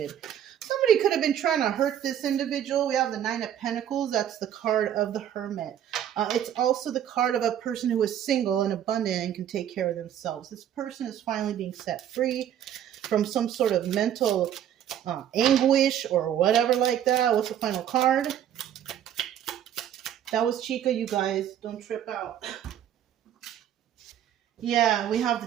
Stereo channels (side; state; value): left; quieter; 10.4 dB